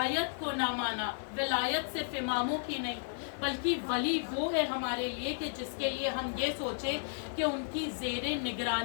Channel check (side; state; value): right; silent; digital silence